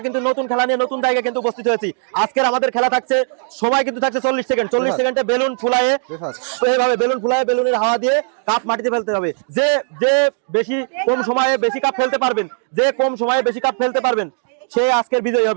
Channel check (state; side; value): silent; left; digital silence